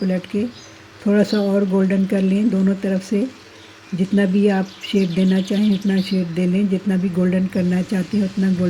के थोड़ा सा और गोल्डन कर लें दोनों तरफ से। जितना भी आप शेड देना चाहें उतना शेड दे लें, जितना भी गोल्डन करना चाहते हैं उतना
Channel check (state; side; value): identical; both; correlation 1.00